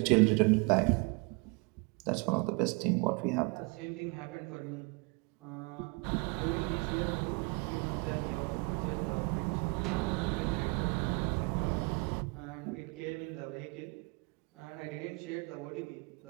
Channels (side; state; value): left; quieter; 30.8 dB